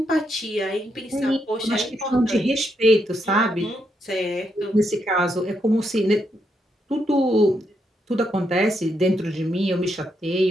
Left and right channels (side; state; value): both; normal; correlation 0.80